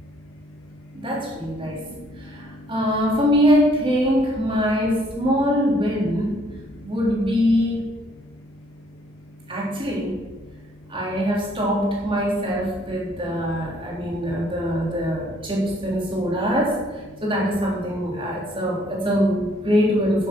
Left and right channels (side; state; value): both; normal; correlation 0.64